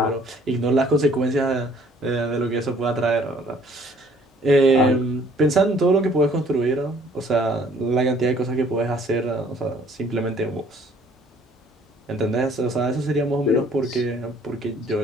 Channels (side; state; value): both; normal; correlation 0.59